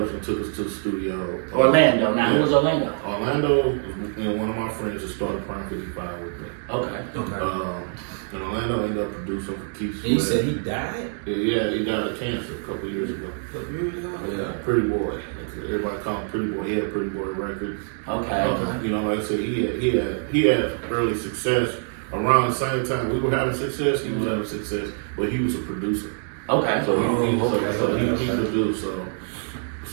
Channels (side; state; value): left; silent; 57 dB below the other